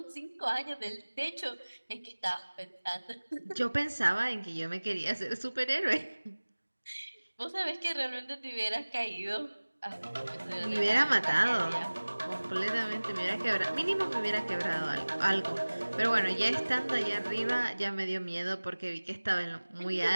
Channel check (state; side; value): inverted; both; correlation -1.00